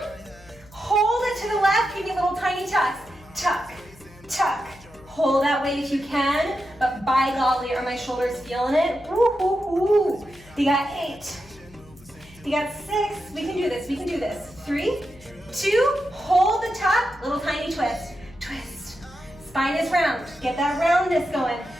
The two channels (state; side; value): noise; left; hum, 24 dB below the sound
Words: hold it to the left, give me little tiny tucks. Tuck, tuck. Hold that weight if you can, but by golly, are my shoulders feeling it? Woo-hoo-hoo. You got 8. You got 6. We can do this, we can do this. 3, 2, hold the tuck, little tiny twist. Twist. Spine is round. Get that roundness going.